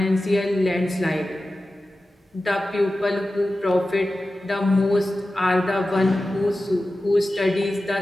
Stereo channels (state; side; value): normal; both; correlation 0.94